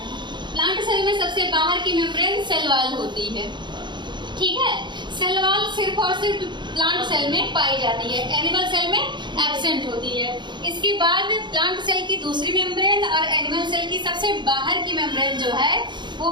प्लांट सेल में सबसे बाहर की मेम्ब्रेन सेल वॉल होती है। ठीक है, सेल वॉल सिर्फ और सिर्फ प्लांट सेल में पाई जाती है, एनिमल सेल में एब्सेंट होती है। इसके बाद प्लांट सेल की दूसरी मेम्ब्रेन और एनिमल सेल की सबसे बाहर की मेम्ब्रेन जो है वो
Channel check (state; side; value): late; left; 0.22 ms